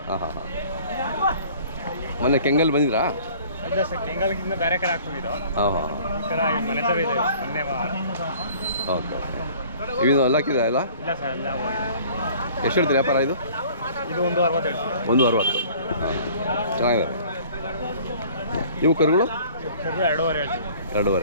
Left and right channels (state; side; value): inverted; both; correlation -0.51